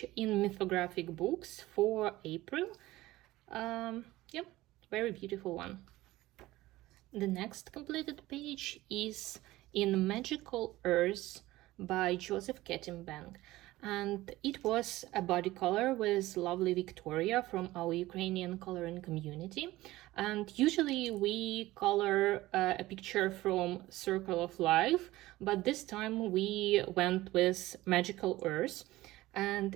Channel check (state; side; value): quieter; left; 17.5 dB